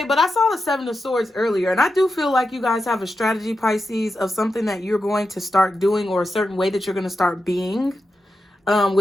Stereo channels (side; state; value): both; normal; correlation 0.89